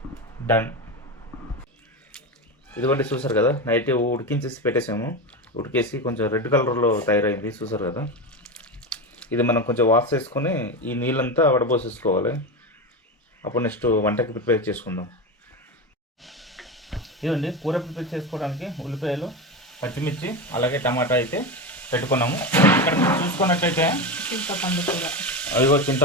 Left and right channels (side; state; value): both; normal; correlation 0.19